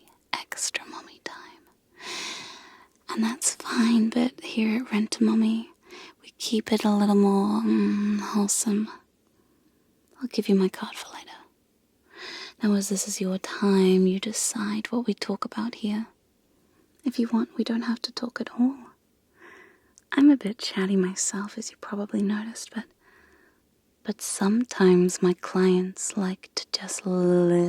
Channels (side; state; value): both; identical; correlation 1.00